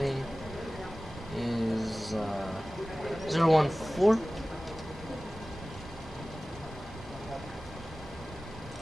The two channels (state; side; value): normal; both; correlation 0.97